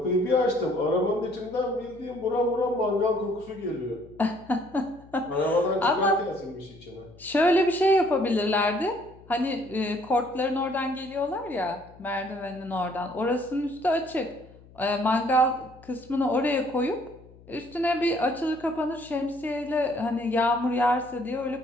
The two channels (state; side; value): noise; left; hum, 23 dB below the sound